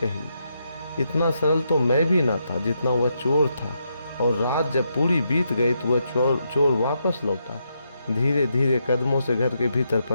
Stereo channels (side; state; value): both; inverted; correlation -0.81